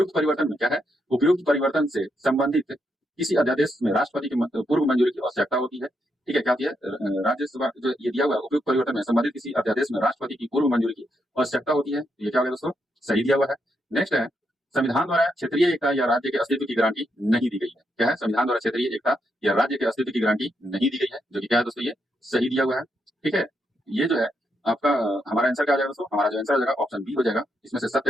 परिवर्तन में क्या है, उपयुक्त परिवर्तन से संबंधित किसी अध्यादेश में राष्ट्रपति की पूर्व मंजूरी की आवश्यकता होती है। ठीक है, क्या होती है, राज्यसभा जो ये दिया हुआ है, उपयुक्त परिवर्तन में संबंधित किसी अध्यादेश में राष्ट्रपति की पूर्व मंजूरी की आवश्यकता होती है, ये क्या होगा दोस्तों, सही दिया हुआ है। नेक्स्ट है, संविधान द्वारा क्षेत्रीय एकता या राज्य के अस्तित्व की गारंटी नहीं दी गई है। क्या है, संविधान द्वारा क्षेत्रीय एकता या राज्य के अस्तित्व की गारंटी नहीं दी गई है, जो कि क्या है दोस्तों, ये सही दिया हुआ है। ठीक है, ये जो है आपका हमारा आंसर क्या हो जाएगा दोस्तों, हमारा जो आंसर हो जाएगा ऑप्शन बी हो जाएगा। इसमें से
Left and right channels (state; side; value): normal; both; correlation 0.80